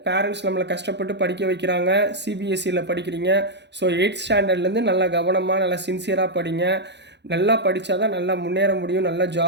பேரண்ட்ஸ் நம்மளை கஷ்டப்பட்டு படிக்க வைக்கிறாங்க சிபிஎஸ்சியில் படிக்கிறீங்க ஸோ 8th ஸ்டாண்டர்ட்லேருந்து நல்லா கவனமாக நல்லா சின்சியராக படிங்க நல்லா படித்தா தான் நல்லா முன்னேற முடியும் நல்லா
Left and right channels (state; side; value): late; left; 0.50 ms